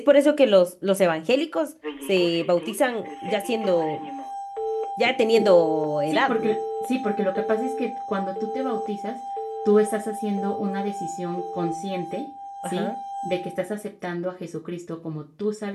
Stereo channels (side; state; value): both; identical; correlation 1.00